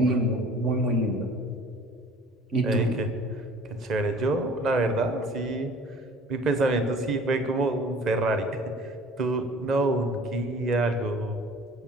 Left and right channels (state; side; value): normal; both; correlation 0.48